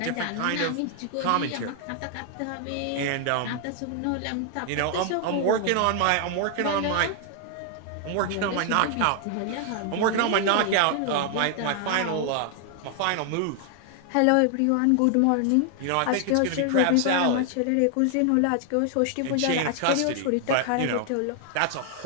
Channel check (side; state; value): both; different; correlation 0.00